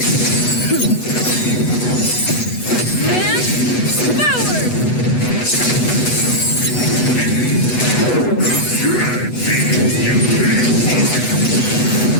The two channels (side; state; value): right; late; 8.1 ms